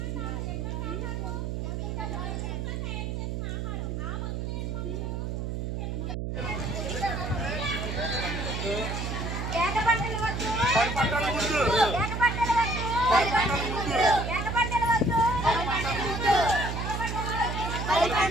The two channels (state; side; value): noise; right; hum, 3 dB below the sound